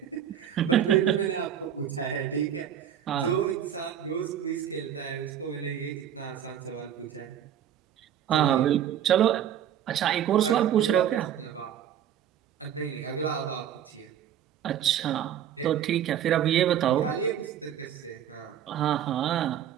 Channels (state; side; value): quieter; left; 9.9 dB